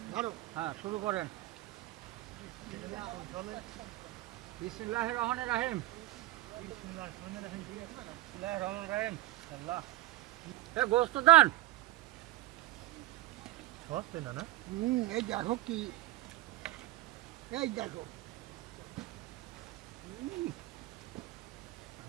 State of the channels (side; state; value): left; quieter; 16.6 dB